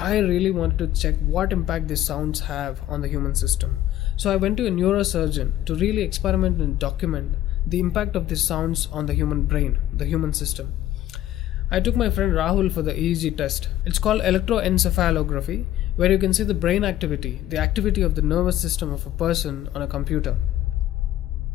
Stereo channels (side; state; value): right; quieter; 13.3 dB